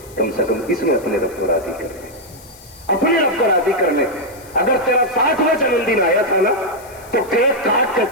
کم سے کم اس میں اپنے رب کو راضی کر لیں, اپنے رب کو راضی کر لیں. اگر تیرا 60واں جنم دن آیا تھا نا تو کیک کاٹ کے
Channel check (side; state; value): left; noise; hiss, 22 dB below the sound